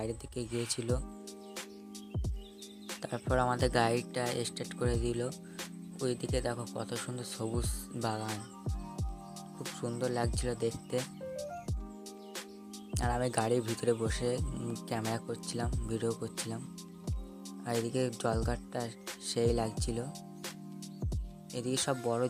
দিকে গিয়েছিল। তারপর আমাদের গাড়িটা স্টার্ট করে দিল। ওইদিকে দেখো কত সুন্দর সবুজ বাগান, খুব সুন্দর লাগছিল দেখতে। আর আমি গাড়ির ভিতরে বসে ক্যামেরা করছিলাম, ভিডিও করছিলাম। আর এদিকে জলঘাটটা সেই লাগছিল। এদিকে সব বড়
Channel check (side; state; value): both; identical; correlation 1.00